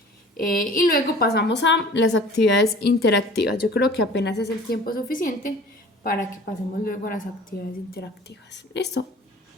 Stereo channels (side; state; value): both; normal; correlation 0.46